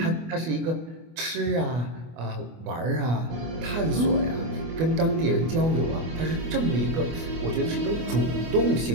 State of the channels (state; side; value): late; left; 24 ms